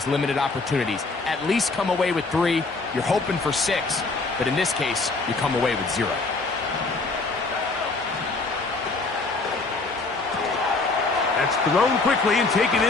limited opportunities. At least come away with 3. You're hoping for 6, but in this case, you come away with 0. That's thrown quickly and taken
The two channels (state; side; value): quieter; right; 3.7 dB